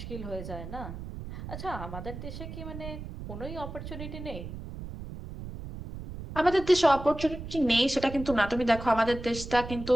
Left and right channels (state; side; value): noise; right; rumble, 10 dB below the sound